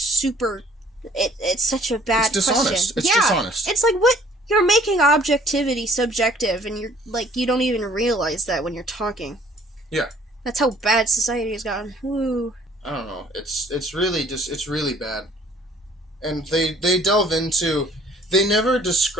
It's such a bad. It's dishonest. Question. It's dishonest. It's like what you're making objectivity subjective, and you're like you don't even realize that when you're talking. Yeah. That's how bad society has gotten. Woo. I don't know. It's really bad, and they delve into. They never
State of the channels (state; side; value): normal; both; correlation 0.57